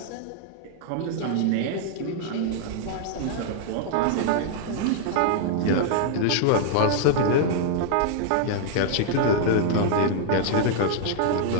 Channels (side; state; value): both; different; correlation -0.01